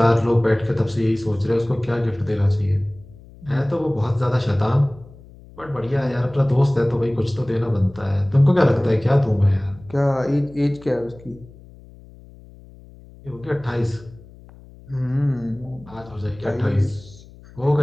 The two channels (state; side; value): noise; left; hum, 21 dB below the sound